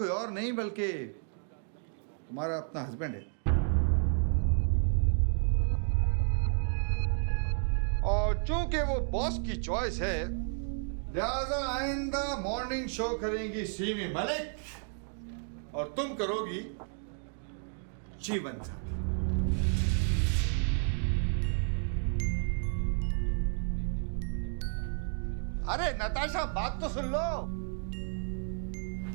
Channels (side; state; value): left; silent; 57 dB below the other